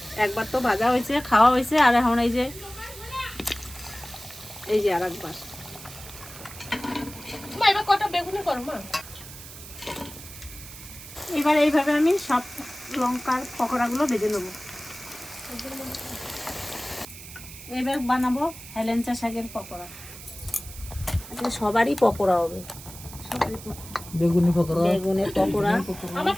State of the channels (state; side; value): noise; right; hiss, 15 dB below the sound